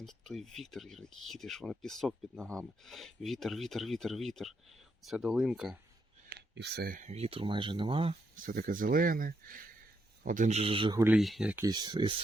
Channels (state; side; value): normal; both; correlation 0.79